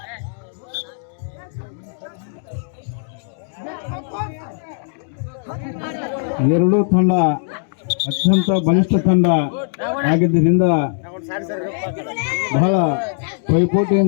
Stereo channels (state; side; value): silent; right; digital silence